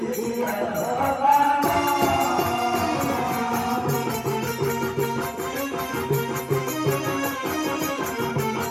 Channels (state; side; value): identical; both; correlation 1.00